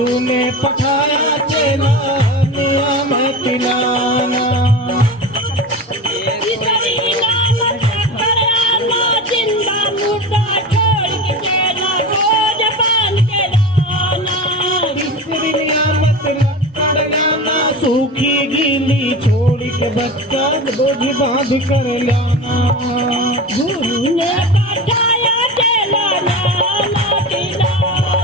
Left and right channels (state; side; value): normal; both; correlation 0.29